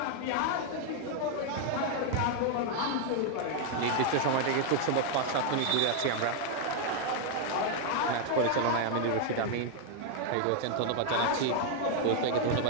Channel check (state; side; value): different; both; correlation 0.00